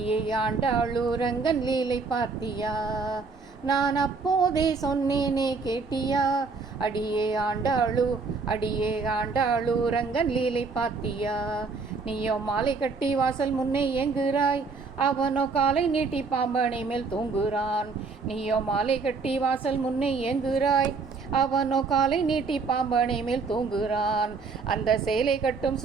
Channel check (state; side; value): quieter; left; 4.4 dB